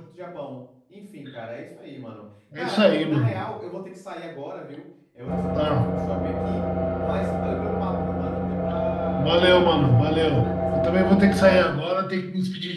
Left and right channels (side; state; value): both; identical; correlation 1.00